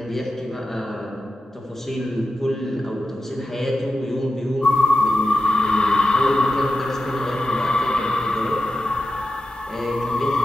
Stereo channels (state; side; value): normal; both; correlation 0.92